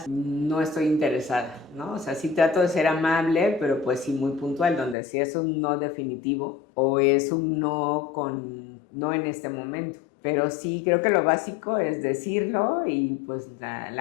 no estoy interesada, ¿no? O sea, sí trato de ser amable, pero pues sí muy puntual, donde si es un no definitivo o es un no en este momento. Pero sí, creo que lo básico es decirlo y pues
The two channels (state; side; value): drops out; right; at 5.0 s